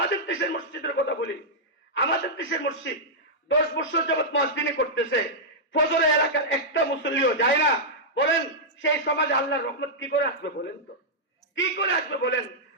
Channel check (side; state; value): both; normal; correlation -0.09